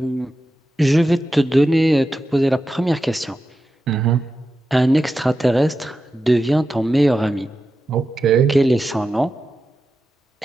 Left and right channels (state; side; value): normal; both; correlation 0.91